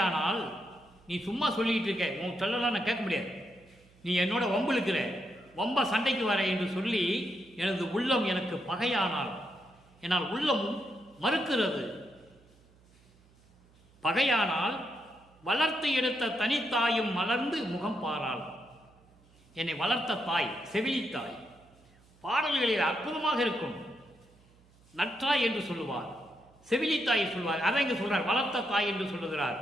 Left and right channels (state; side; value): noise; right; hum, 29 dB below the sound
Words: நீ சும்மா சொல்லிட்டு இருக்க, உன் சொல்லலாம் நான் கேட்க முடியாது, நீ என்னோட வம்புழுக்கிற, வம்ப சண்டைக்கு வர என்று சொல்லி எனது உள்ளம் எனக்கு பகையானால், என்னால் உள்ளமும் மறுக்கிறது. பகையானால் வளர்த்து எடுத்த தனித்தாயும் மலர்ந்து முகம் பாராள். என்னை வளர்த்த தாய், செவிலித்தாய். பாடல்களில் அற்புதமாக இருக்கும். நற்றாய் என்று சொல்லுவார், செவிலித்தாய் சொல்வார். அதை இங்கு சொல்றார், வளர்த்த தாய் என்று சொல்லுகிறார்.